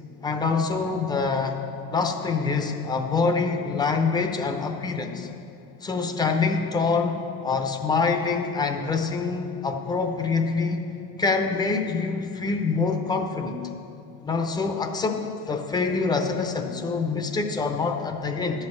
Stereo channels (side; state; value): right; quieter; 4.1 dB